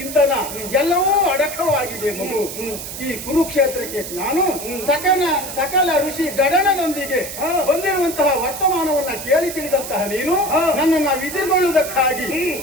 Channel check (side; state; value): right; noise; hiss, 9 dB below the sound